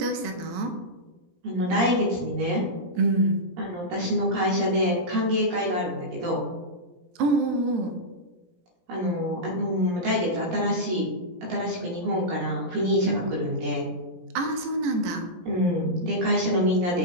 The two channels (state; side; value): late; left; 17 ms